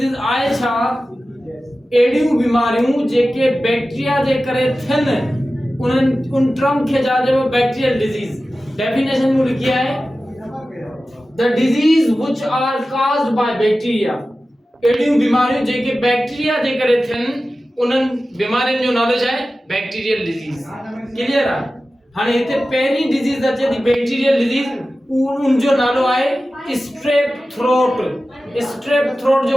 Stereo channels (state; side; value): normal; both; correlation 0.95